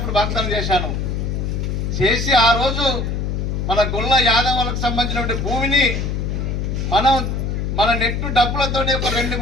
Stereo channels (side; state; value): left; noise; hum, 1 dB below the sound